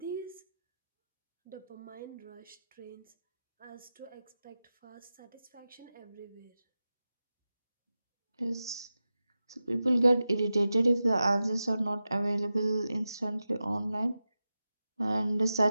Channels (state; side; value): inverted; both; correlation -0.93